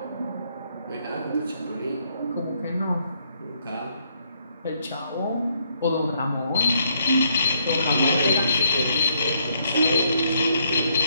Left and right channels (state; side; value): inverted; both; correlation -0.72